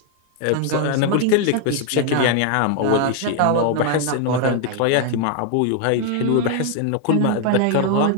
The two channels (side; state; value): both; different; correlation 0.00